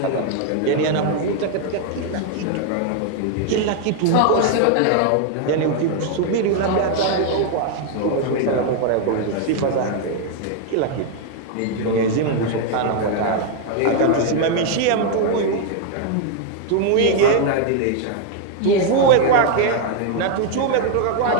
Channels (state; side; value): different; both; correlation 0.00